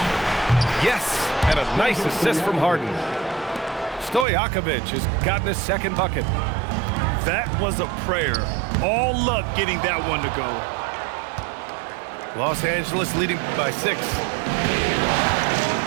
Yes, and a nice assist from Harden. Stojakovic has gotten his second bucket. That was a prayer. All luck getting that one to go. Los Angeles leading by 6.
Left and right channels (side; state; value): left; drops out; at 4.2 s